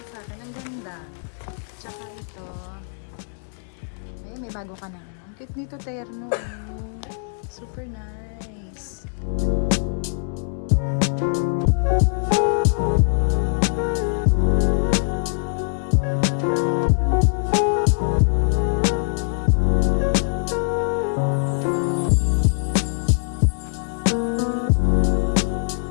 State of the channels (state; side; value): silent; right; digital silence